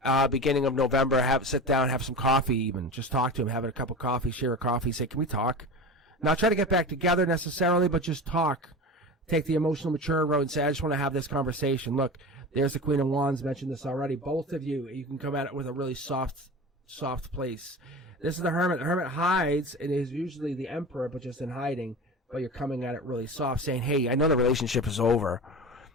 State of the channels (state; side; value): normal; both; correlation 0.30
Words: beginning of November. Sit down, have some coffee even. Just talk to him, have a cup of coffee, share a coffee, say, can we talk? Not try to get back together necessarily, but just talk. Take the emotional mature road and say, I just want to have this conversation. Look, there's the Queen of Wands, mentioned this already. Both of you can come at it with a really soft place. This is the Hermit. The Hermit hides and is usually the Emperor, but just in hiding. But you're coming at it really soft, saying, hey, I know the relationship is over.